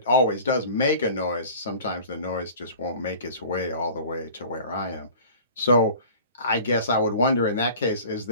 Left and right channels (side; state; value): both; inverted; correlation -0.43